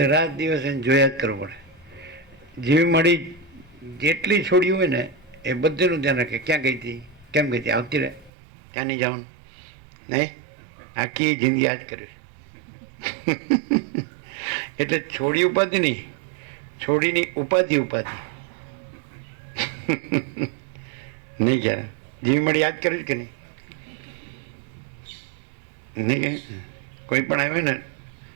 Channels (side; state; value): left; drops out; at 8.3 s